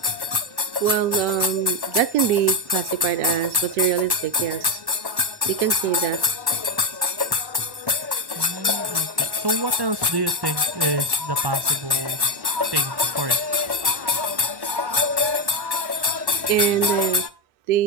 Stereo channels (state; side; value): late; left; 1.1 ms